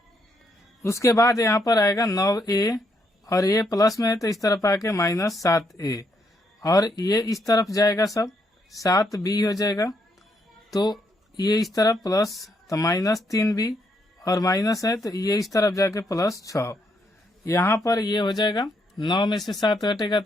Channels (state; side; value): normal; both; correlation 0.75